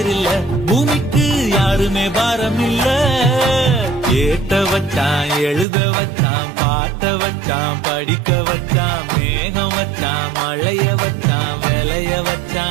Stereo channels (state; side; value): drops out; left; at 5.7 s